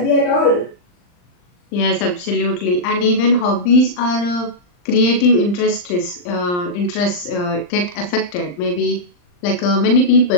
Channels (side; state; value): right; late; 39 ms